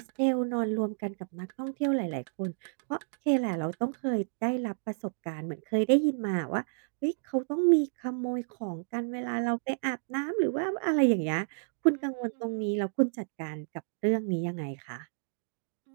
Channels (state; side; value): silent; left; digital silence